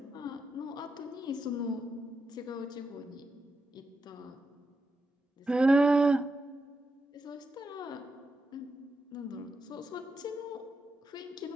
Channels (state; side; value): normal; both; correlation 0.86